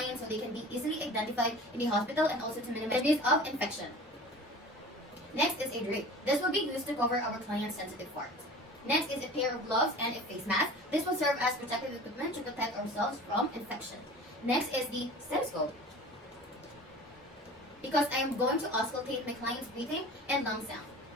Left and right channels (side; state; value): both; normal; correlation 0.40